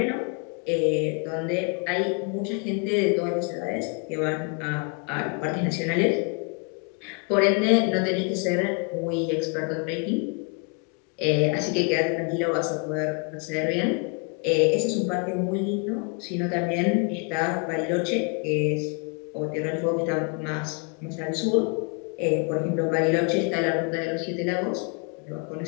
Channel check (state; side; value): quieter; right; 36.1 dB